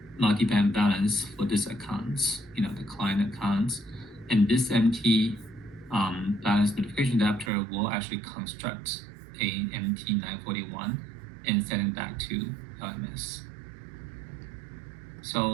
multi-bank balance for this account, the client accounts, and this MT balance notification adapter will actually construct a MT941 and send it back to LMS.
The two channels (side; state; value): left; drops out; at 7.5 s